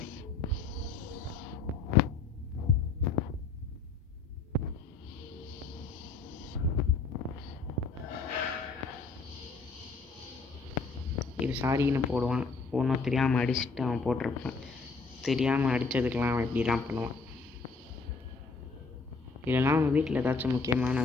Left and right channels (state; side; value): quieter; right; 4.3 dB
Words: இது சாரின்னு போடுவான். ஒன்றும் தெரியாமல் அடிச்சுட்டு அவன் போட்டிருப்பான். தெரியாமல் அடித்ததுக்கெலாம் அவன் இப்படி தான் பண்ணுவான். இதெல்லாம் அவன் வீட்டில் ஏதாச்சும் முக்கியமான